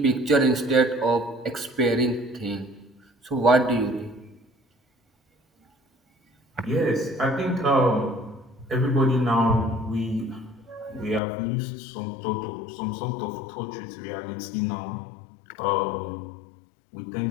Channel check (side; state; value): right; drops out; at 11.2 s